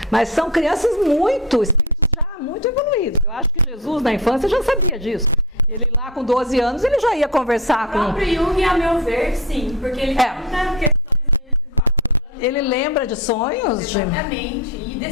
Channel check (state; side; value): normal; both; correlation 0.24